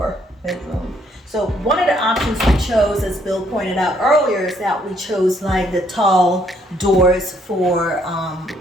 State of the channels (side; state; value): both; normal; correlation 0.68